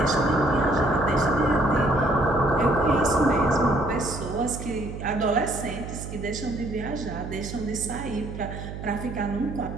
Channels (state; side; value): noise; right; hum, 9 dB below the sound